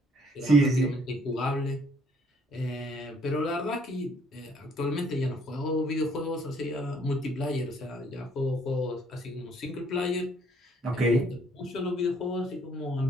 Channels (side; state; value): both; normal; correlation 0.64